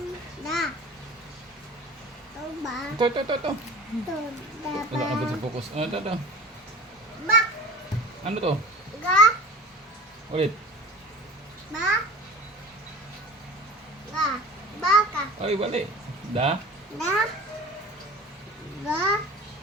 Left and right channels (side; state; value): both; normal; correlation 0.38